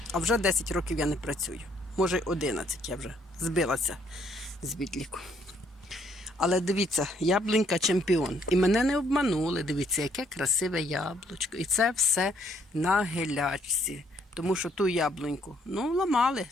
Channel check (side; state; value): both; normal; correlation 0.67